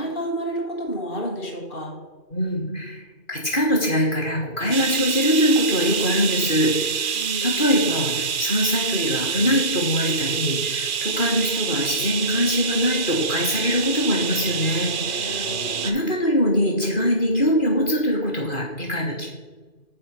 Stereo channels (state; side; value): late; right; 2.4 ms